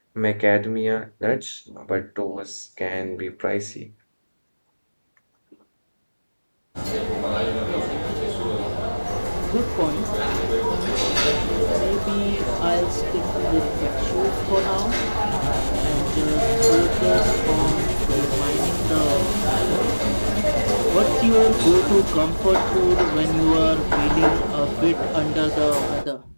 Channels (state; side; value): inverted; both; correlation -1.00